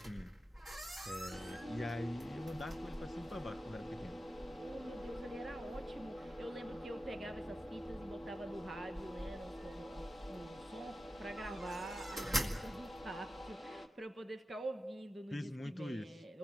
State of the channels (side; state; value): both; normal; correlation 0.93